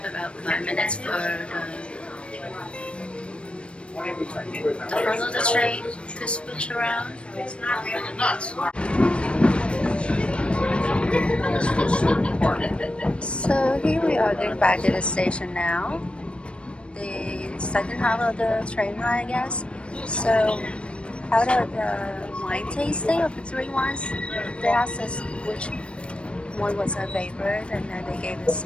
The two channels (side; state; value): right; late; 0.058 ms